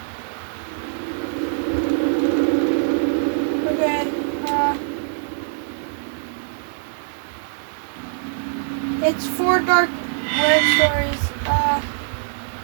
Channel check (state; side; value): silent; left; digital silence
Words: Okay, it's 4 Dark Web stories.